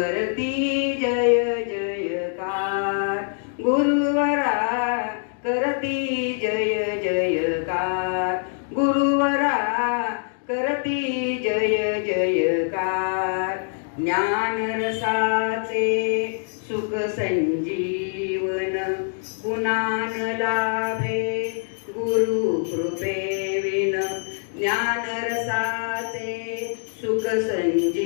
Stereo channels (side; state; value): right; silent; 63 dB below the other